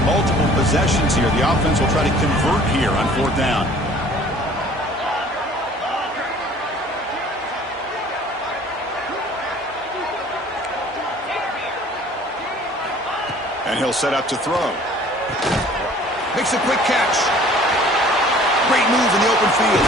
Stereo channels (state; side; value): normal; both; correlation 0.51